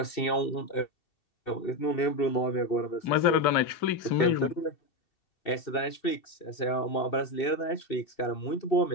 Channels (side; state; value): right; late; 2.7 ms